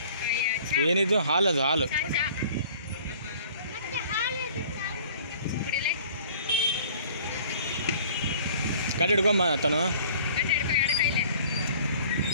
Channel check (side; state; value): both; inverted; correlation -0.51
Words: ಏನಿದು ಹಾಲು ಗಾಡಿ ಹಿಡ್ಕೊಂಬ ತನು